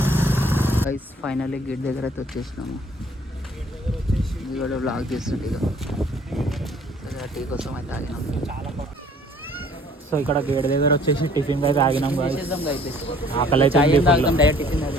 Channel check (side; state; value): both; normal; correlation 0.56